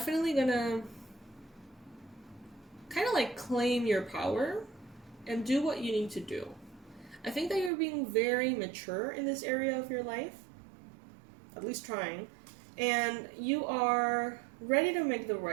going to kind of like claim your power and do what you need to do. I think that you're being very mature in this area of your life, at least trying, and you are ready to make the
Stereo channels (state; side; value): drops out; left; at 7.7 s